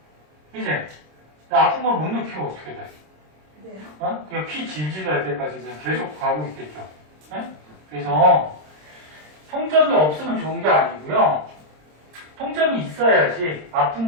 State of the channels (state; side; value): late; left; 26 ms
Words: 이제 아픈 걸 못 느끼면 어떻게 돼? 네. 그냥 피 질질 날 때까지 그냥 계속 가고 있겠죠. 응? 그래서 통점이 없으면 좋은 게 아니고요. 통점이 있어야지 아픈